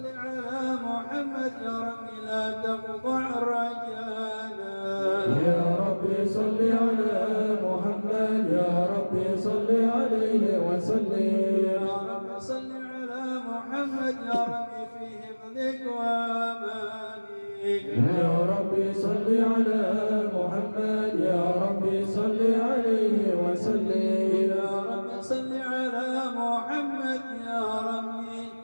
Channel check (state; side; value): inverted; both; correlation -1.00